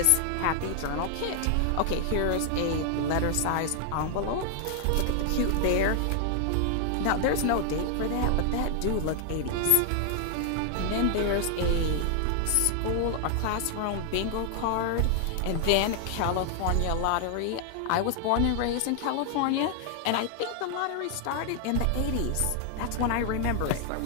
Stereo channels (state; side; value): different; both; correlation 0.00